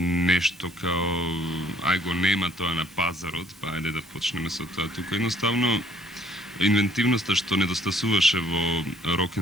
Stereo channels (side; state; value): right; noise; hiss, 28 dB below the sound